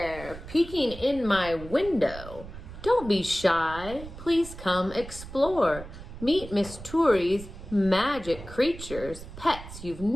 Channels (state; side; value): noise; right; rumble, 13 dB below the sound